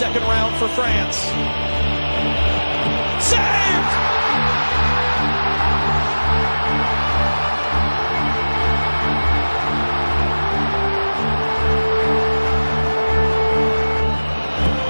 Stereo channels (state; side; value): inverted; both; correlation -1.00